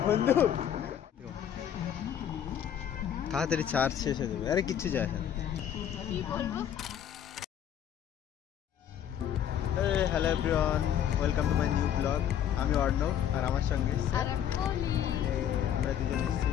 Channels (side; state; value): right; quieter; 9.8 dB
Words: বন্ধু, তাড়াতাড়ি চার্জ শেষ হয়ে যাবে। আরে কিচ্ছু যায় না। Hello everyone, welcome to my new blog. আমি অর্ণব আর আমার সঙ্গে আমরা দুজন এসেছি